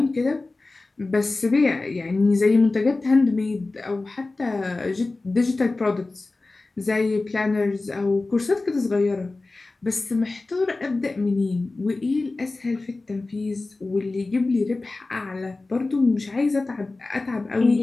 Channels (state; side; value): quieter; right; 3.3 dB